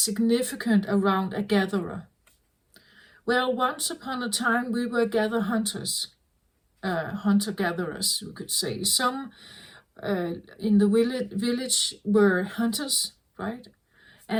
around a gatherer? Well, once upon a time we were hunters, hunter-gatherers, we could say. Some in the village were hunters, right?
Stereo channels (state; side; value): identical; both; correlation 1.00